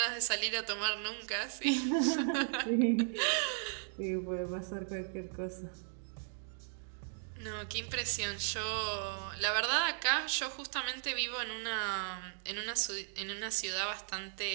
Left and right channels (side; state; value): left; silent; digital silence